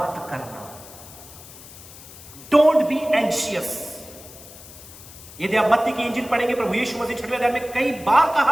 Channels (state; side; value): noise; left; hiss, 18 dB below the sound